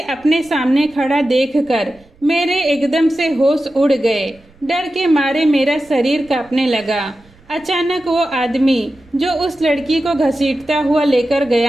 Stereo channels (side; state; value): right; noise; rumble, 28 dB below the sound